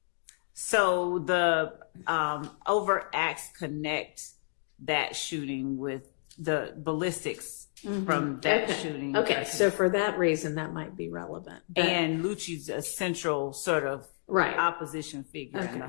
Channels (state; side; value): silent; right; digital silence